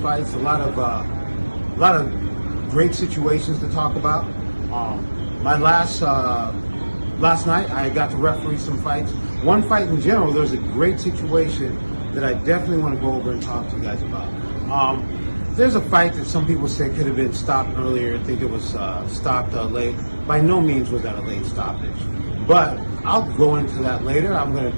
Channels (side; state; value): both; inverted; correlation -1.00